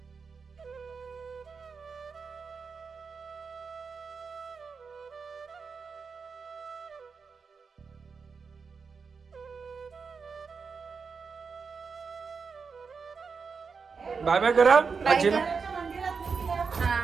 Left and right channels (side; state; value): left; quieter; 5.3 dB